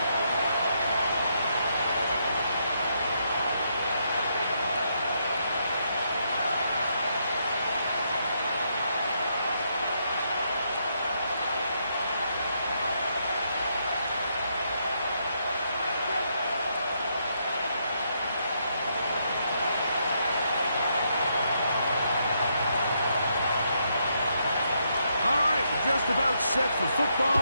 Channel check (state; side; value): inverted; both; correlation -0.77